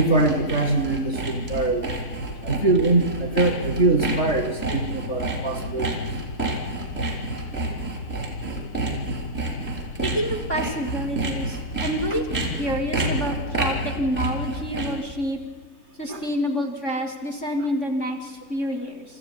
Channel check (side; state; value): right; late; 3.5 ms